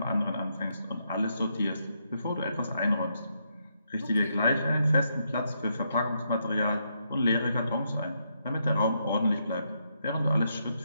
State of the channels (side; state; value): both; inverted; correlation -0.79